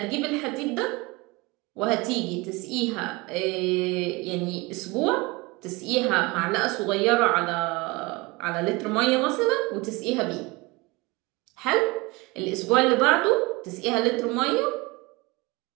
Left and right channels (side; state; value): left; quieter; 24.5 dB